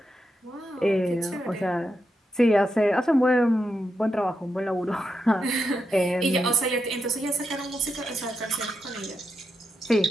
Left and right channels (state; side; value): normal; both; correlation 0.85